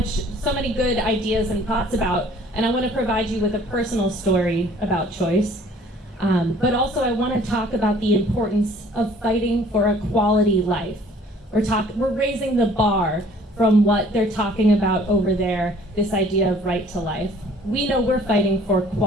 good ideas and thoughts about, and I want to provide you with a personal story about choice. But also I want to talk about the importance of fighting for a quality life. We're raising the bar from what they're talking about over there, this idea of right to life. We know we're fighting for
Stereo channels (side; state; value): both; normal; correlation 0.54